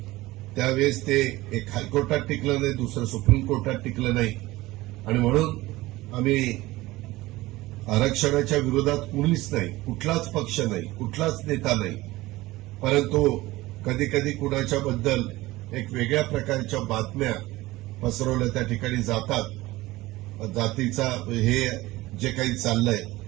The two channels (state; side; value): quieter; left; 18.8 dB